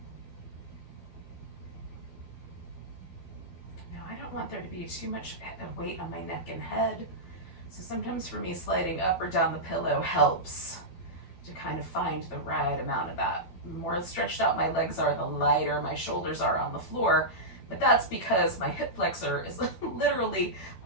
Want there to be too much weight on my neck and head. So sometimes for me, sliding up or down the pillow helps to kind of find the right amount of that. The more stretched out my legs are, the lighter my shoulders are on the floor. But that's because my hip flexor is literally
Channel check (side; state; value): right; late; 12 ms